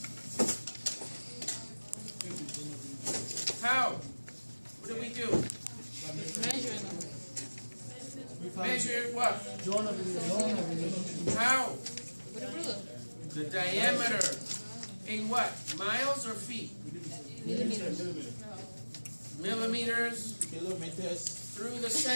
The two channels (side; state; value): both; inverted; correlation -1.00